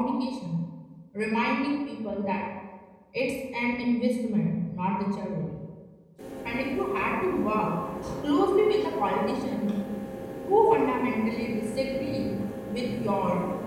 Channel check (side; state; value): both; identical; correlation 1.00